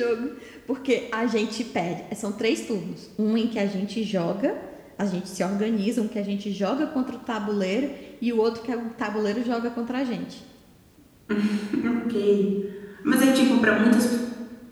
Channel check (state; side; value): identical; both; correlation 1.00